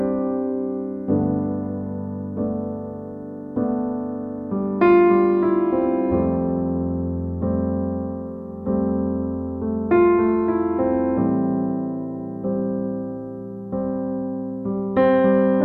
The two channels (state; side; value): identical; both; correlation 1.00